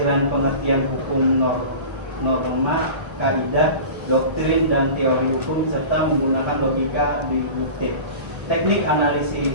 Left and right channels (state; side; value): late; left; 1.3 ms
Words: pengertian hukum norma, kaidah, doktrin, dan teori hukum, serta menggunakan logika deduktif. Teknik